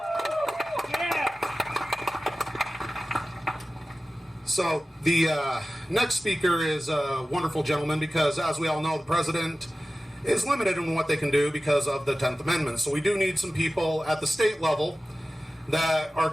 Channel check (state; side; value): normal; both; correlation 0.95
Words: So the next speaker is a wonderful gentleman because, as we all know, the president is limited in what they can do because of the 10th Amendment. So we do need some people at the state level that are